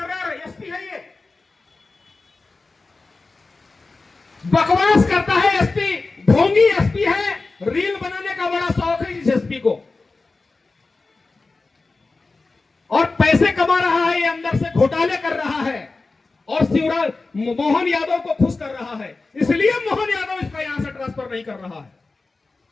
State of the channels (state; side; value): quieter; right; 3.7 dB